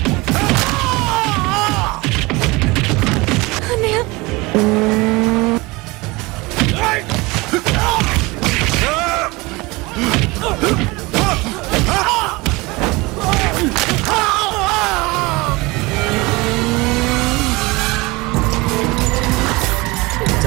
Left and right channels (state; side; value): quieter; left; 23.4 dB